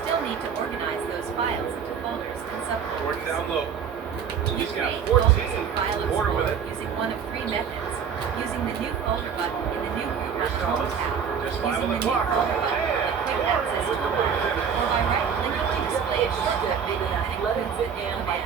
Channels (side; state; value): left; quieter; 7.0 dB